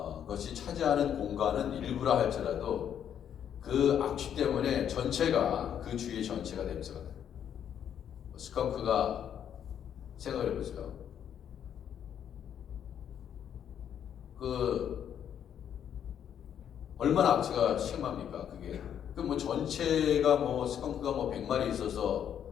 것이 차지하는 공간은 일부라 할지라도 그 악취 때문에 전체가 그 주위 전체가 냄새가 나요. 스컹크가 생각을 해보세요. 그 얼마나 악취가 심합니까? 그게 그 뭐 전체가 뭐 스컹크가 뭐 100마리 있어서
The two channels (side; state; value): right; quieter; 9.2 dB